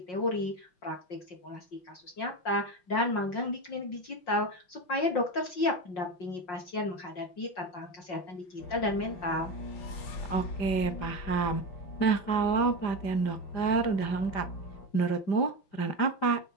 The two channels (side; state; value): right; late; 5.6 ms